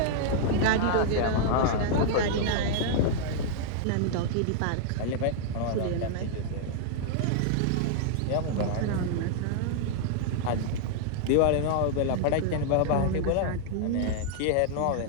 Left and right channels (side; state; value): both; different; correlation -0.01